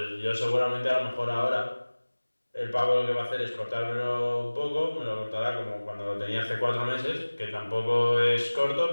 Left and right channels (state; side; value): inverted; both; correlation -1.00